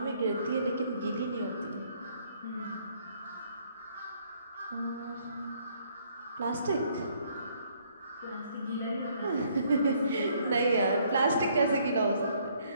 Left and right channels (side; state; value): both; inverted; correlation -0.66